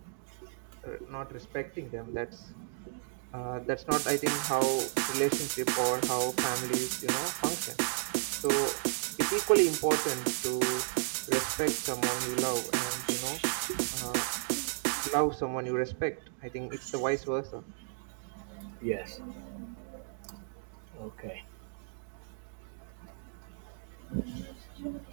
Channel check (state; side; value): silent; left; digital silence